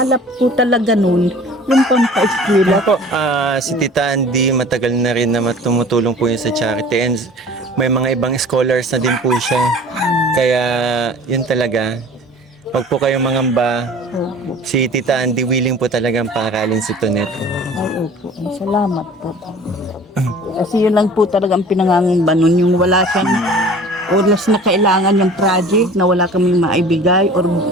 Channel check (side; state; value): both; normal; correlation 0.45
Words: po talaga nun, yung pampaeskwela. Po, si Tita Andy, matagal na rin na tumutulong po yun sa charity and may mga ibang scholars na din po siya. Kaya yun talaga, wag po kayong mangamba. Opo. Si Tita Andy willing po talagang paaralin si Tonet. Ay, opo. Salamat po. Kasi yun lang po talagang pinangangamba nun, yung wala siyang oras na kailangan yung project na wala kaming maibigay or